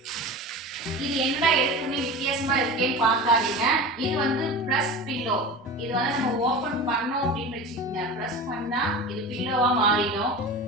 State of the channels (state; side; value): normal; both; correlation 0.31